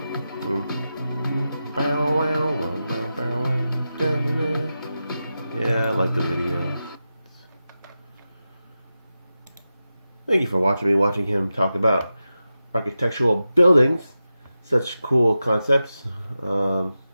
Yeah, I like the video. Thank you for watching him talk about architectural buildings. Such cool concepts.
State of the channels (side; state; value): both; inverted; correlation -0.91